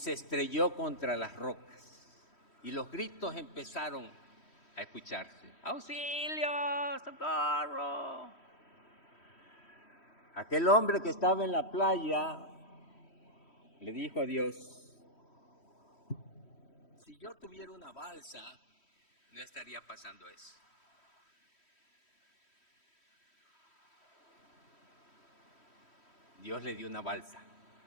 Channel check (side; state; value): right; late; 3.1 ms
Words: estrelló contra las rocas. Y los gritos empezaron a escucharse. ¡Auxilio! ¡Socorro! Aquel hombre que estaba en la playa le dijo a Dios, si yo tuviera una balsa, no estaría pasando eso. Dios le dio una balsa.